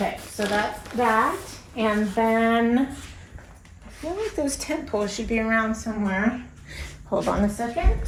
so that's that. And then I feel like those tent poles should be around somewhere. Hold on a second.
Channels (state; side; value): identical; both; correlation 1.00